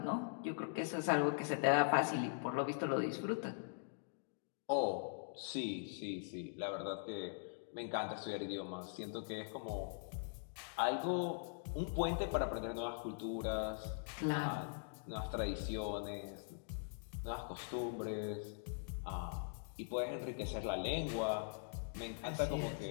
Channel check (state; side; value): silent; right; digital silence